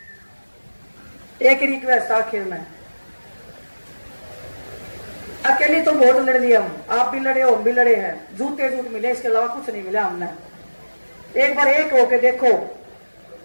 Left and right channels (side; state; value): both; inverted; correlation -1.00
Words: एक रिक्वेस्ट आखिर में, अकेली तो बहुत लड़ लिया हम, आप भी लड़े हो, हम भी लड़े हैं, झूठे झूठ मिले, इसके अलावा कुछ नहीं मिला हमने। एक बार एक होके देखो